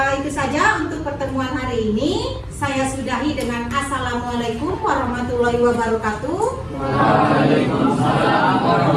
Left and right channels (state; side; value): identical; both; correlation 1.00